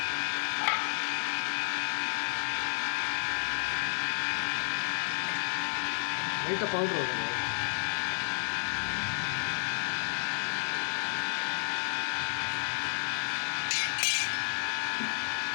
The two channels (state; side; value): silent; right; 56 dB below the other